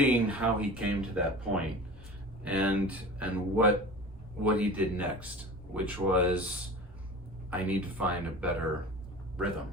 how he came to that point and what he did next, which was, I need to find a better rhythm.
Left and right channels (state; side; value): normal; both; correlation 0.36